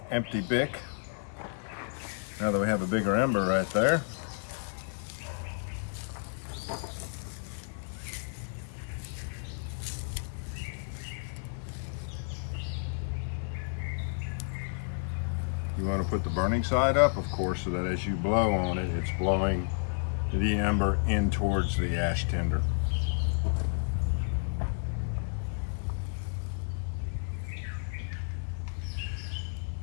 empty BIC. Now that we have a bigger ember right there. You want to put the burning side up, of course, so that as you blow on it, it's blowing the ember in towards the ash tinder.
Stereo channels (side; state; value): right; silent; 56 dB below the other